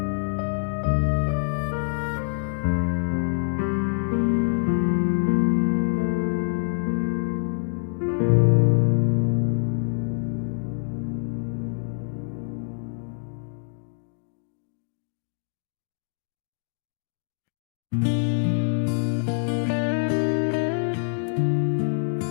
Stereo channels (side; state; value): right; silent; digital silence